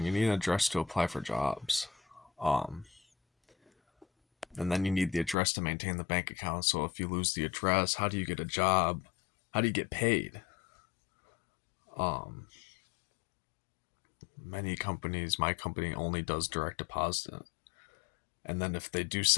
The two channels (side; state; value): right; drops out; at 5.4 s